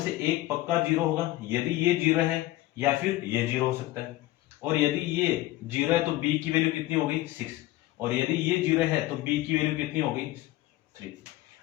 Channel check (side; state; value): right; quieter; 17.0 dB